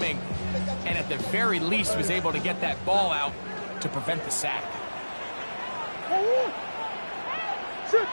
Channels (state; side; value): inverted; both; correlation -1.00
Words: and at the very least was able to get that ball out to prevent the sack. Sit,